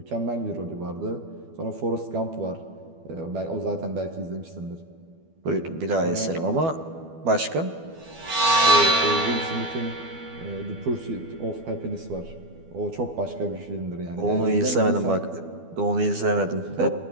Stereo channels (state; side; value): late; left; 12 ms